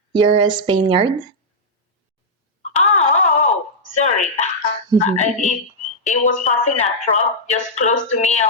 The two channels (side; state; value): both; normal; correlation -0.07